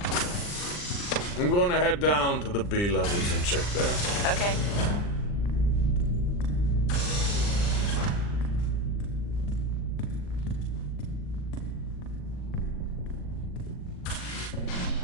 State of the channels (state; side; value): late; right; 40 ms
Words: I'm going to head down to the B levels and check there. Okay.